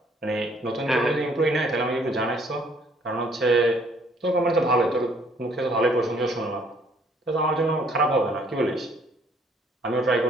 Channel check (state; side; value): normal; both; correlation 0.62